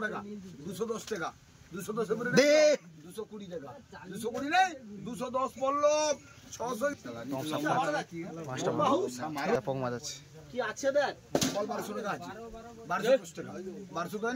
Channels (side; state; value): both; identical; correlation 1.00